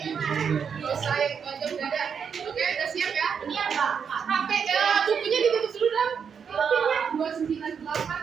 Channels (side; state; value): left; quieter; 6.8 dB